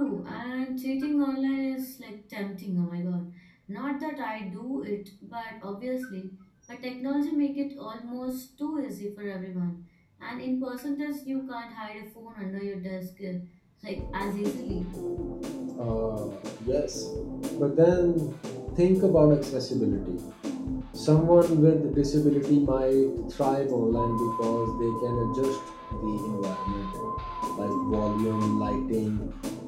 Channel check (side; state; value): both; identical; correlation 1.00